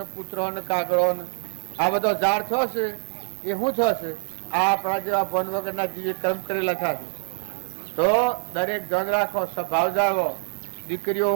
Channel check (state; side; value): silent; left; digital silence